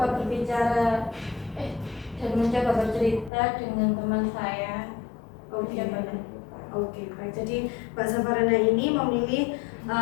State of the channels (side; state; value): right; drops out; at 3.3 s